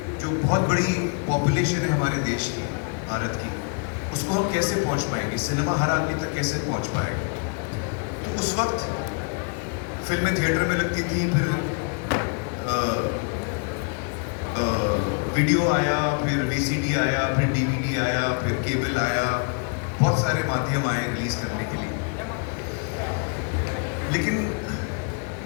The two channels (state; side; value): quieter; right; 38.7 dB